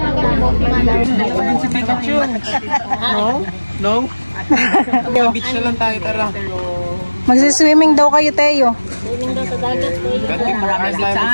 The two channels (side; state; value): both; inverted; correlation -1.00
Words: Si Pikachu. No? Beach na lang tayo, tara. Magsiswimming daw kayo, Teo. Swimming daw sa dagat, Teo. Marami sa